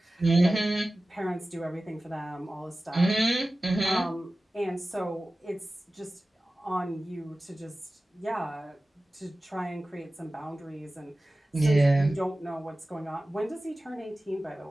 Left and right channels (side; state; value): both; normal; correlation 0.96